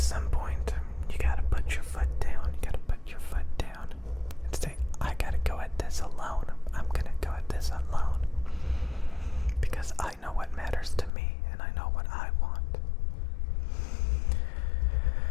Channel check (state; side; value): drops out; right; at 11.1 s